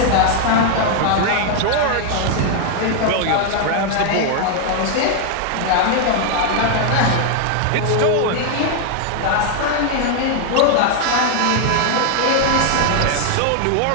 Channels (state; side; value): different; both; correlation 0.00